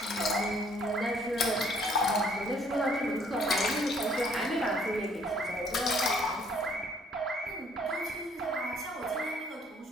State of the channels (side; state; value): both; normal; correlation 0.62